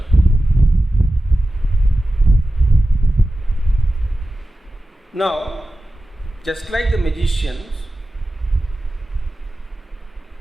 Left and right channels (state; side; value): normal; both; correlation 0.94